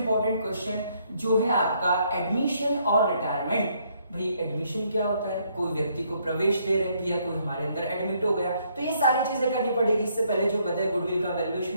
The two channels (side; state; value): both; inverted; correlation -0.70